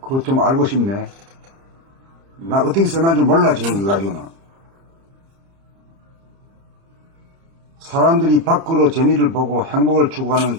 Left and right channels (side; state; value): left; late; 30 ms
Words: 그것 좀 알고 싶네. 나 어떻게 써난 줄 몰라, 지금 그거 가지고는. 사람들이 밖으로 재미를 보고 행복을 추구하는